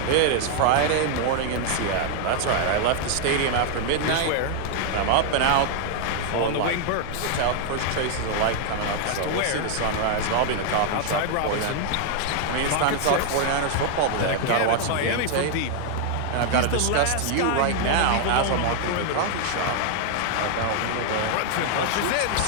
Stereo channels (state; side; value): different; both; correlation 0.00